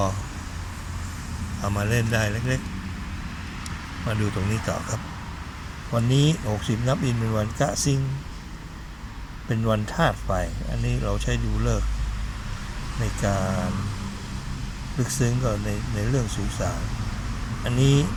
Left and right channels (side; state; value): both; identical; correlation 1.00